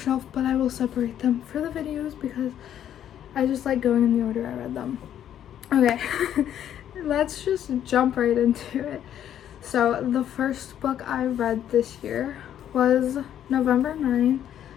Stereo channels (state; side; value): quieter; right; 10.4 dB